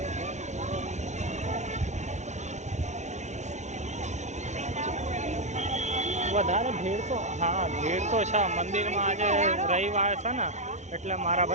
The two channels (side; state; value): left; late; 0.33 ms